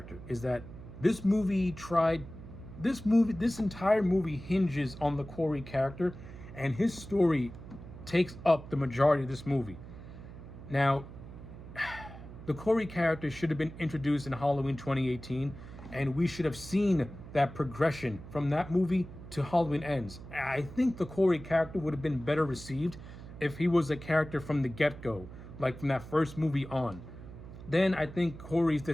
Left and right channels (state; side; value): noise; right; hum, 14 dB below the sound